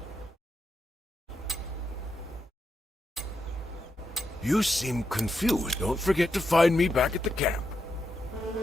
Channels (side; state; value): both; normal; correlation 0.84